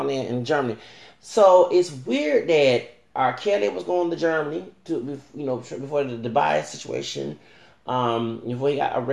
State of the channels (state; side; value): identical; both; correlation 1.00